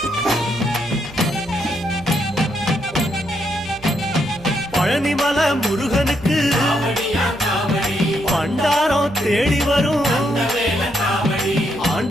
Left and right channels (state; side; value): noise; right; hum, 20 dB below the sound